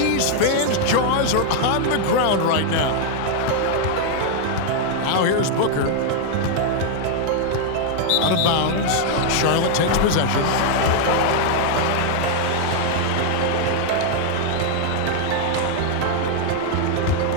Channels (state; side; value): different; both; correlation 0.00